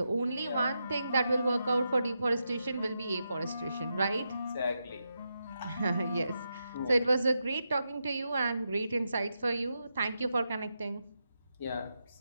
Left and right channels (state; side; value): inverted; both; correlation -0.86